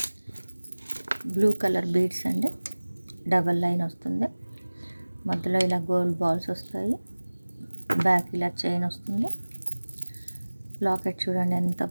Blue colour beads అండి, డబల్ లైన్ వస్తుంది. మధ్యలో ఇలా గోల్డ్ బాల్స్ వస్తాయి. బ్యాక్ ఇలా చైన్ వస్తుంది. లాకెట్ చూడండి ఎంత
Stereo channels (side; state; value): both; inverted; correlation -1.00